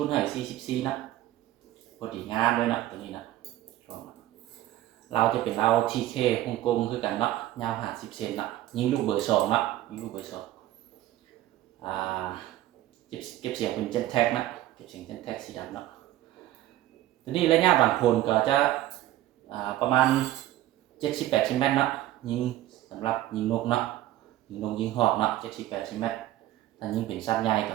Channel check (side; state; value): left; quieter; 14.3 dB